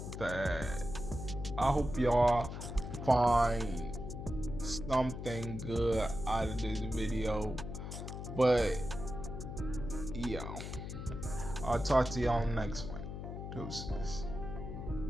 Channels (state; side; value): noise; left; hum, 7 dB below the sound